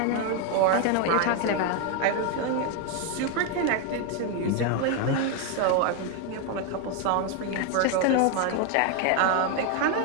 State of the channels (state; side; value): different; both; correlation 0.01